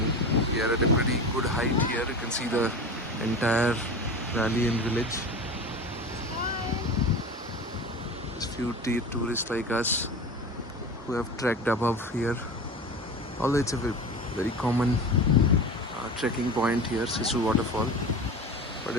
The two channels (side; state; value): both; normal; correlation 0.31